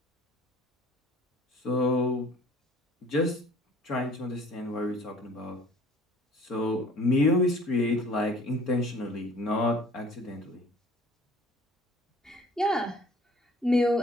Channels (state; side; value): normal; both; correlation 0.51